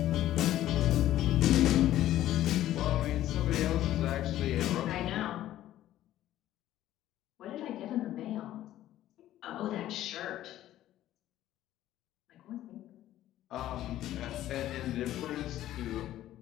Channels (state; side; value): quieter; right; 13.4 dB